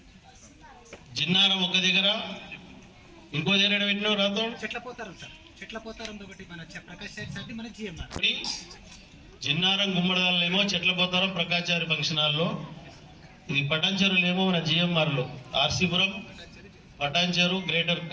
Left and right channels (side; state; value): both; identical; correlation 1.00